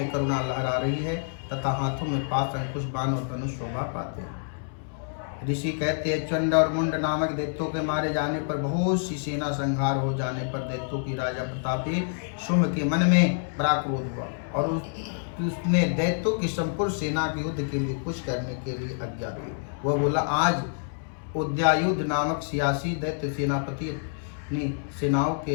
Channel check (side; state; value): right; silent; 60 dB below the other